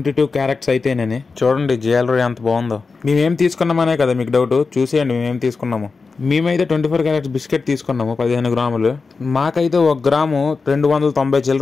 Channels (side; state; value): right; quieter; 4.4 dB